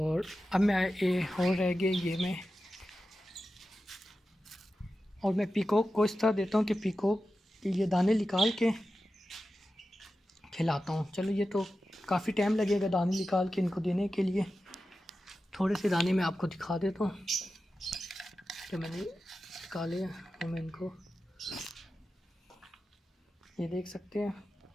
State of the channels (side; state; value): both; normal; correlation 0.92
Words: अब मैं ये और रह गए, मैं पीकॉक को इस तरह देता हूँ कि पीकॉक के ये दाने निकाल के खिलाता हूँ। चलो ये तो काफ़ी टाइम लगेगा दाने निकाल के इनको देने के लिए। थोड़े से दाने मैं आपको दिखा देता हूँ कि मैंने निकाले हैं, और मैं इनको, ये देख सकते हैं।